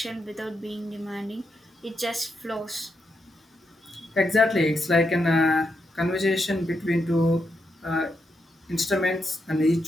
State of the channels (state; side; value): normal; both; correlation 0.83